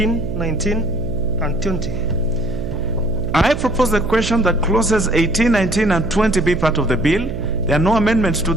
19, and 20. I propose the question that clauses 18, 19, and 20 be part of the bill. There are no amendments to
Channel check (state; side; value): noise; right; hum, 6 dB below the sound